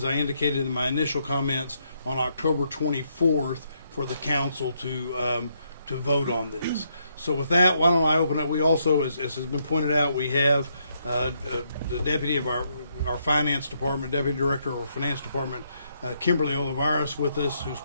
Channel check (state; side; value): inverted; both; correlation -0.75